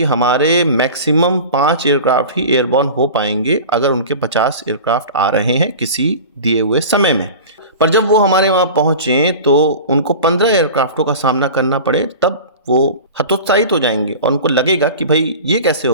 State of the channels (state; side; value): inverted; both; correlation -0.35